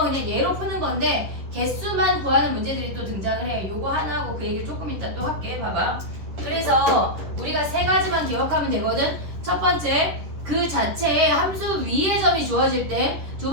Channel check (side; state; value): left; late; 10 ms